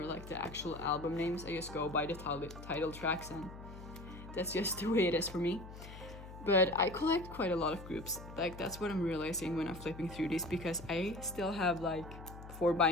like the actual album names. I just go by the title tracks, and that's just the way it is for me. But I collect quite a lot of groups. Like that's what I'm realizing when I'm flipping through these, because I still have like 4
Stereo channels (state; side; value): noise; left; hum, 14 dB below the sound